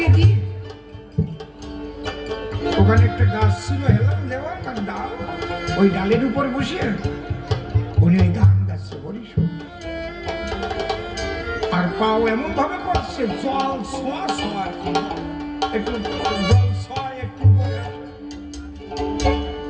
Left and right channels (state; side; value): identical; both; correlation 1.00